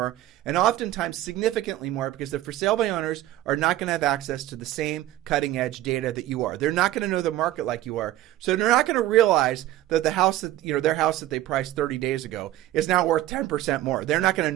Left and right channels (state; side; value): quieter; left; 14.8 dB